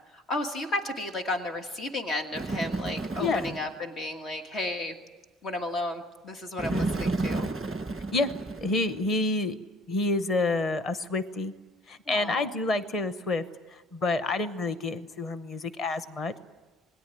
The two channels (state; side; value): normal; both; correlation 0.55